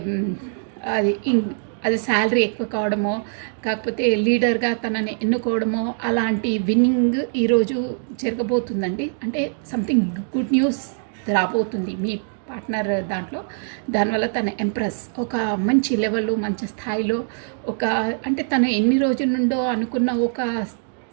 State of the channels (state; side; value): silent; left; digital silence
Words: అది శాలరీ ఎక్కువ కావడమో, కాకపోతే లీడర్గా తనని ఎన్నుకోవడమో అలాంటి విన్నింగ్ ఈరోజు జరగబోతుందండి. అంటే సంథింగ్ గుడ్ న్యూస్ రాబోతుంది మీ పార్ట్నర్ దాంట్లో. దానివల్ల తన ఎంప్రెస్ ఒక మంచి లెవెల్లో, మంచి స్థాయిలో, ఒక అంటే తను ఎన్ని రోజుల నుండో అనుకున్న ఒక